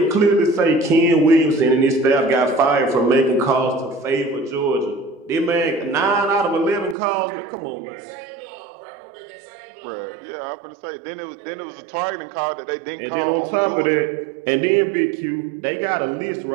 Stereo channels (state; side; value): drops out; left; at 7.0 s